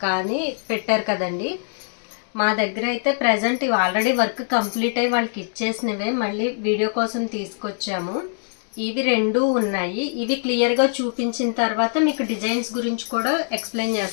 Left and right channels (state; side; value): silent; right; digital silence